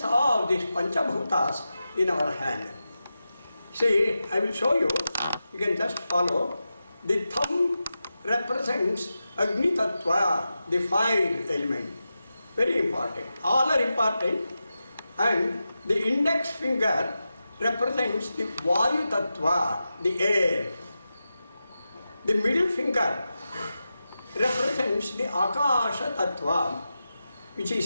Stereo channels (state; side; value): inverted; both; correlation -0.91